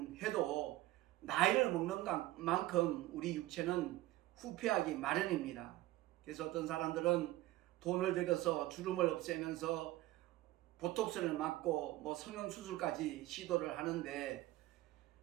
해도 나이를 먹는 만큼 우리 육체는 후퇴하기 마련입니다. 그래서 어떤 사람들은 돈을 들여서 주름을 없애면서 보톡스를 맞고 뭐 성형수술까지 시도를 하는데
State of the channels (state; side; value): quieter; left; 16.9 dB